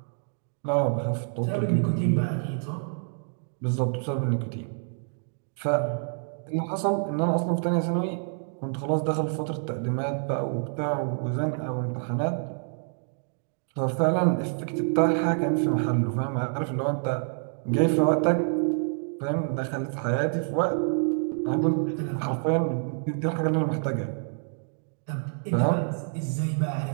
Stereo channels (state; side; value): silent; left; 60 dB below the other